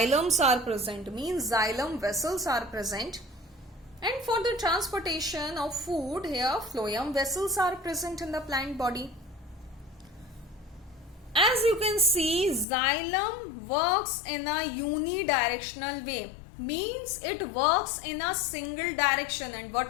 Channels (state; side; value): drops out; right; at 12.7 s